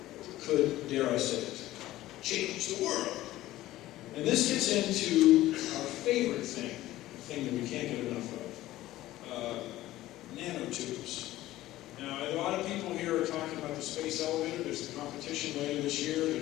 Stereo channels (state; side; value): quieter; right; 15.7 dB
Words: could, dare I say it, change the world. And this gets into our favorite thing, the thing that we can't get enough of. nanotubes. Now, a lot of people here are talking about the space elevator. There's a competition later this year.